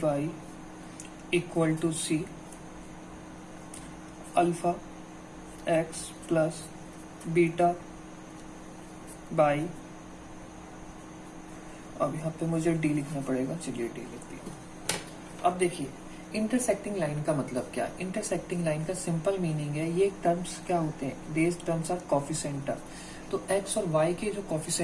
by equal to c, alpha x plus beta y, अब यहाँ पे मुझे डी लिखना पड़ेगा, चलिए डी लिख दिया। अब देखिए इंटरसेक्टिंग लाइन का मतलब क्या है। इंटरसेक्टिंग लाइन का सिंपल मीनिंग है, ये टर्म्स क्या होते हैं, देज टर्म्स आर कोफिशिएंट टर्म। तो x और y के जो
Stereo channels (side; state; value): both; identical; correlation 1.00